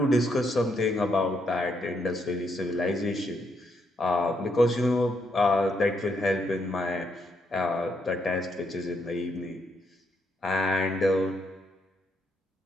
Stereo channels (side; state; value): both; normal; correlation 0.77